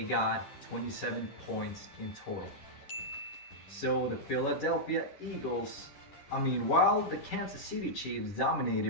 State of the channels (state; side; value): late; right; 10 ms